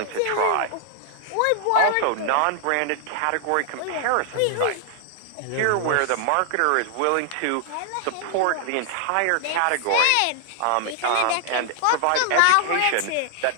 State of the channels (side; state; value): both; different; correlation 0.00